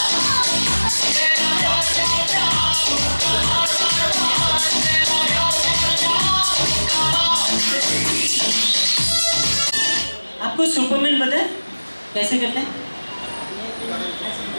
आपको सुपरमैन पता है कैसे करते हैं?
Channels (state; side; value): inverted; both; correlation -1.00